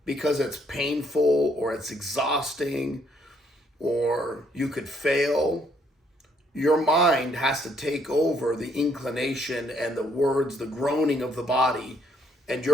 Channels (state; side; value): normal; both; correlation 0.69